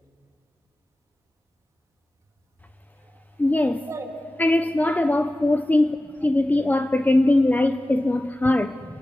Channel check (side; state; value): both; normal; correlation 0.95